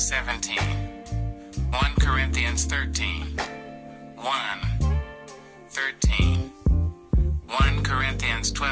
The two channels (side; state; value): both; identical; correlation 1.00